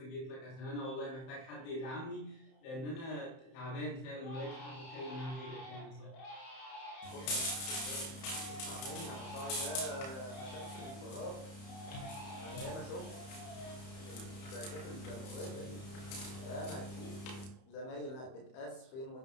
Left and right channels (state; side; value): late; right; 31 ms